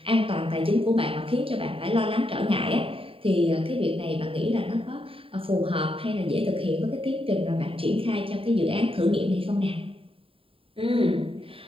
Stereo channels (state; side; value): late; left; 0.27 ms